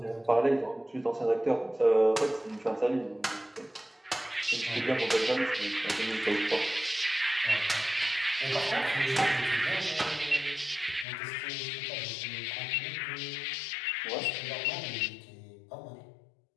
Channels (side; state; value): right; drops out; at 11.1 s